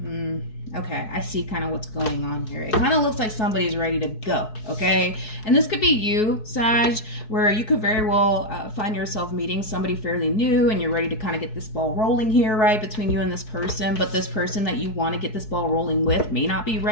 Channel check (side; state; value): right; late; 4.7 ms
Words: Okay, I see kind of what's going on here. It kind of looks like somebody's ready to go, okay? And this could be you, Sag, where you could very well find yourself meeting somebody fairly new and you're ready to kind of get this ball rolling here, right, between you and this person. But this person that you want to get this ball rolling with may not be